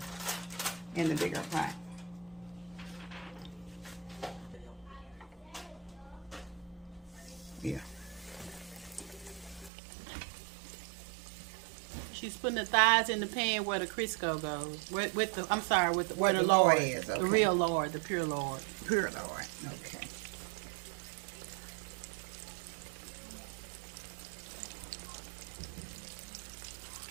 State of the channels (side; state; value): left; drops out; at 9.7 s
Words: in the bigger pot. Yeah. She's putting the thighs in the pan where the Crisco goes. With the, I'm sorry, with the, where the Lard Lard is. Okay. The real Lard, the pure Lard. Pure Lard. Okay.